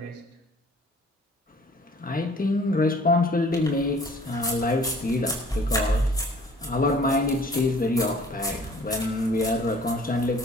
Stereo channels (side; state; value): both; normal; correlation 0.53